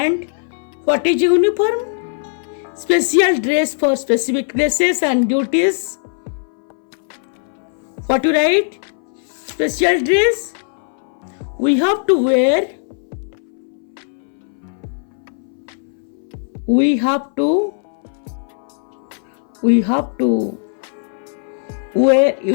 what is uniform? Special dress for specific places and duties. What to write? Special dress. We have to wear. We have to wear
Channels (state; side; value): silent; right; 61 dB below the other